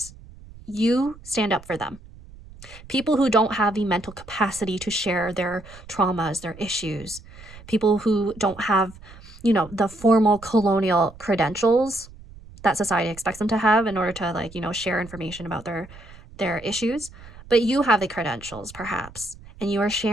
You stand up for them. People who don't have the mental capacity to share their traumas, their issues. People who don't have, you know, the formal colonial credentials that society expects them to have in order to, like, you know, share information about their issues. But you have the credentials, perhaps, and you are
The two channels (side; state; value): right; noise; rumble, 19 dB below the sound